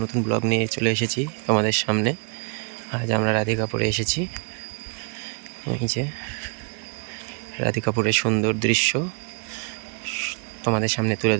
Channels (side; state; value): left; quieter; 38.5 dB